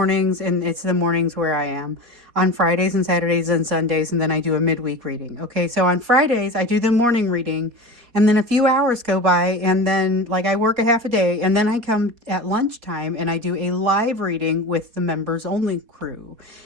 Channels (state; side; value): late; left; 4.2 ms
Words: and it's the mornings where I am on Fridays and Saturdays and Sundays, and then I do a midweek reading. Okay, so on Fridays I do the morning reading, and then a few hours go by, and then I work a half a day, and then I come at lunchtime and I do a live reading with the members only crew,